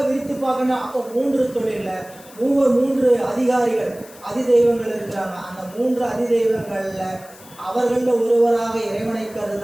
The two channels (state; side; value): noise; left; hiss, 22 dB below the sound